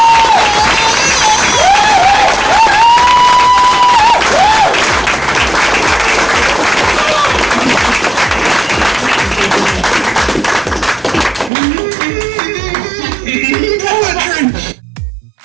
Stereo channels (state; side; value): drops out; left; at 11.5 s